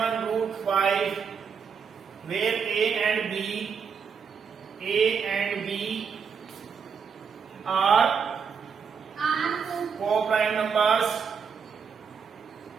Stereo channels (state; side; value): quieter; left; 6.3 dB